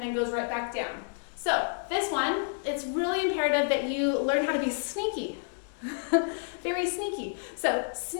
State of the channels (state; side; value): silent; right; digital silence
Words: then goes right back down. So this one, it's really imperative that you learn how to be sneaky. Very sneaky. So